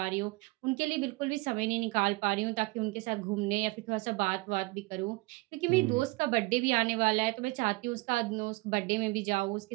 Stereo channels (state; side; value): quieter; left; 23.7 dB